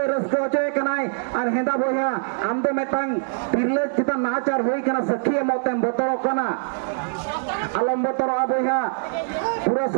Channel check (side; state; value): left; silent; digital silence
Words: रस्को होचोय कनाय और हेंदा बोया आम दो मेटांग तिरले चिता नाचार होई कना सखी मौतेम बतरो कना अलम बतरो बोया पूरा